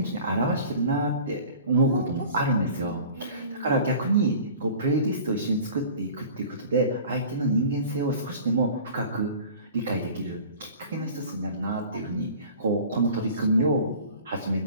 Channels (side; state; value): both; inverted; correlation -0.43